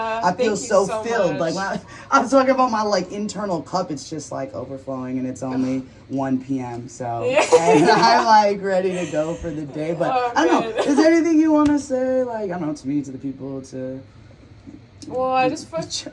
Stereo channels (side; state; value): both; identical; correlation 1.00